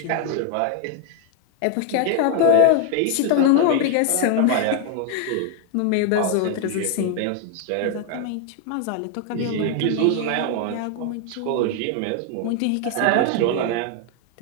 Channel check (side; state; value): both; different; correlation 0.00